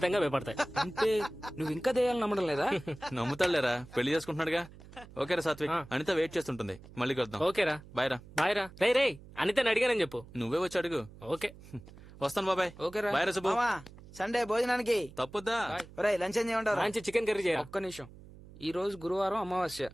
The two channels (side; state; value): right; noise; hum, 19 dB below the sound